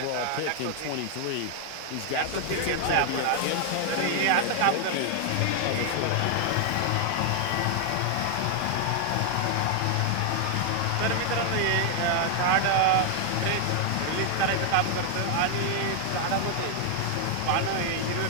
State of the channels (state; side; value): different; both; correlation 0.00